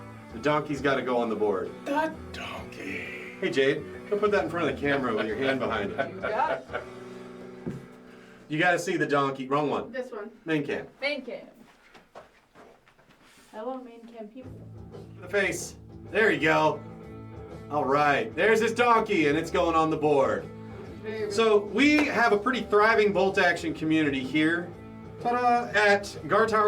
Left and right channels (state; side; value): identical; both; correlation 1.00